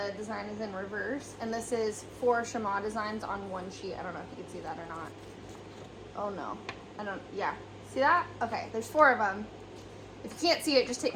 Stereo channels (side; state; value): both; identical; correlation 1.00